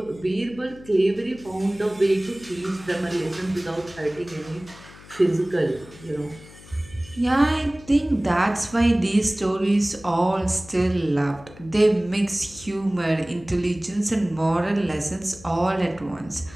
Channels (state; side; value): noise; left; hum, 20 dB below the sound